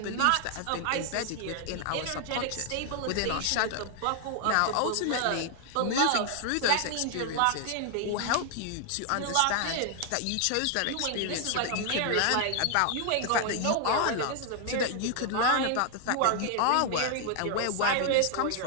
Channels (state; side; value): different; both; correlation 0.00